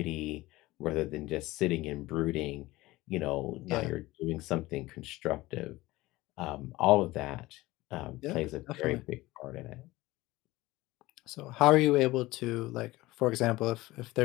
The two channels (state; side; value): quieter; right; 19.1 dB